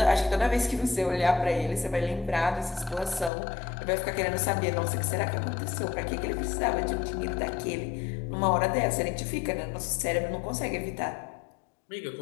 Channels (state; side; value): drops out; right; at 3.3 s